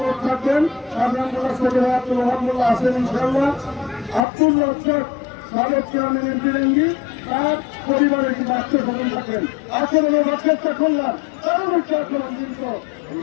থাকবেন, শাহজাহান মোল্লা সদর আব্দুল ওহাব মোল্লা আছেন ইনশাল্লাহ, আব্দুল রজ্জাক সাবেক চেয়ারম্যান এমবিরাঙ্গি তার পরিবারের কিছু আত্মীয় স্বজন থাকবেন। আচরণে রক্ষা করলাম কারণ হচ্ছে আচরণ কিন্তু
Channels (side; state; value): right; drops out; at 4.2 s